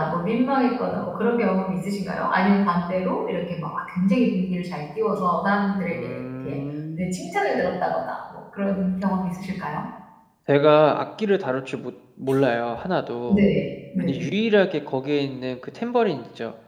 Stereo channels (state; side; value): identical; both; correlation 1.00